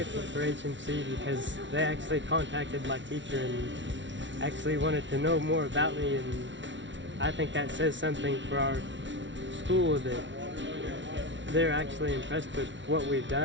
for HMC because they actually contacted my teacher and actually wanted to know more about me, and I think that says something for our school, that they're actually impressed with what we've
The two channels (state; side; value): late; left; 0.55 ms